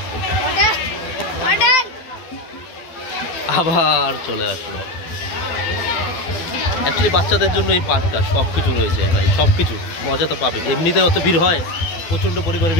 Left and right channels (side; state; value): right; late; 12 ms